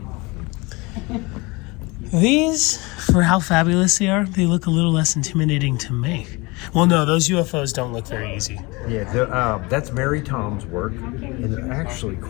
These, for how fabulous they are, they look a little less intimidating to make. Well, no, those UFOs don't look very easy. Yeah, that's Mary Tom's work, and they're actually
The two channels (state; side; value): quieter; right; 25.2 dB